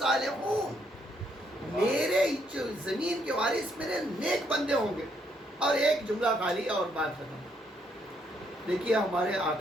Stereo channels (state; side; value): normal; both; correlation 0.72